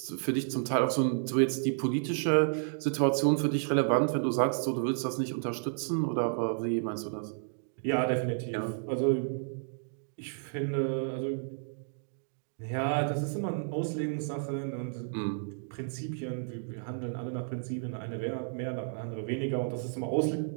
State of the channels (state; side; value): silent; left; digital silence